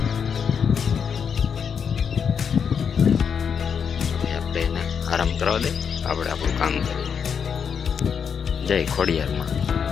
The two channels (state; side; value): quieter; right; 6.9 dB